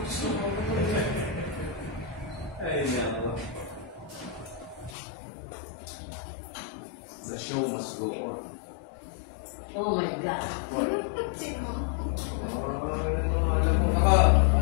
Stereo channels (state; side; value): drops out; right; at 5.0 s